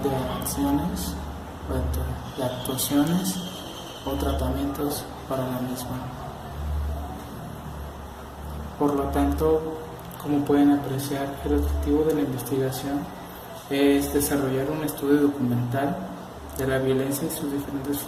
de acciones, de actuaciones o tratamientos para la misma. Por lo tanto, como pueden apreciar, el objetivo de la investigación es desarrollar un estudio documental de la violencia y sus diferentes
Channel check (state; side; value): identical; both; correlation 1.00